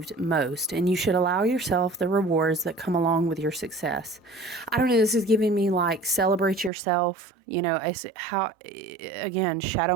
most, and you should allow yourself the rewards that come along with your success. I don't know, this is giving me like celebrate yourself. You know, how, again,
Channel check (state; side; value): drops out; left; at 6.7 s